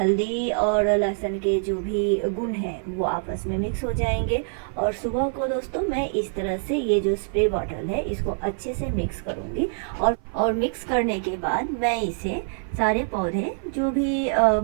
और लहसुन के जो भी गुण हैं वो आपस में मिक्स हो जाएंगे। और सुबह को दोस्तों मैं इस तरह से ये जो स्प्रे बॉटल है इसको अच्छे से मिक्स करूँगी, और मिक्स करने के बाद मैं इसे सारे पौधे जो भी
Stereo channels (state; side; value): silent; left; 56 dB below the other